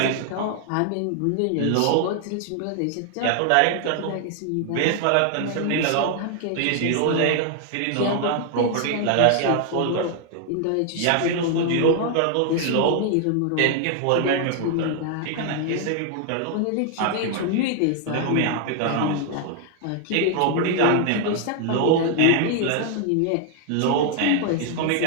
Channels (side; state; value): both; different; correlation 0.00